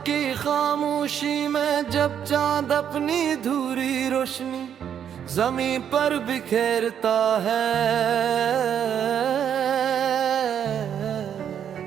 की खामोशी में जब चांद अपनी धूरी रोशनी जमीन पर बिखेरता है,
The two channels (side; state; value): left; quieter; 8.9 dB